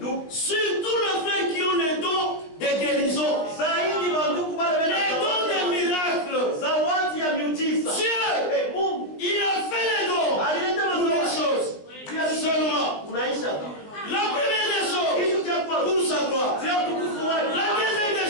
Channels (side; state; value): right; late; 19 ms